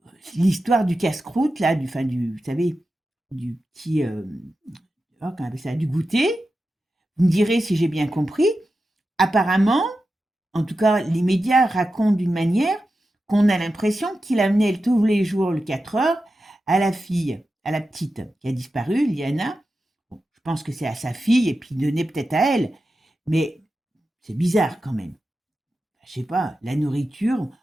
l'histoire du casse-croûte, là, vous savez, du petit, oh, comment on appelle ça, du goûter, vous me direz si j'ai bien compris, apparemment, en tout cas, les médias racontent d'une manière qu'on a l'impression qu'il amenait tous les jours le 4 heures à la fille, à la petite qui a disparu, Liana. Bon, je pense que c'est à sa fille et puis donner peut-être à elle, mais c'est bizarre quand même. Je sais pas, la nourriture,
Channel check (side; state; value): both; normal; correlation 0.91